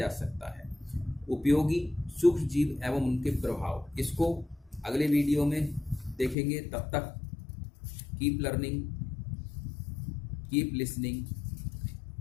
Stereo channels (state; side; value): drops out; right; at 6.4 s